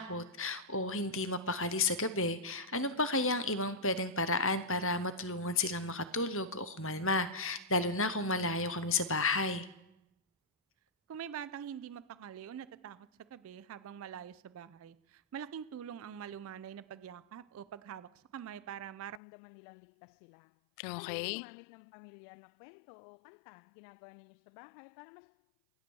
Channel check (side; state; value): right; drops out; at 19.2 s